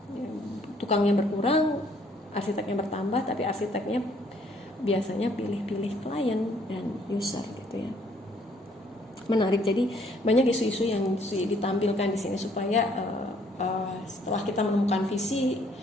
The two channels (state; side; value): normal; both; correlation 0.64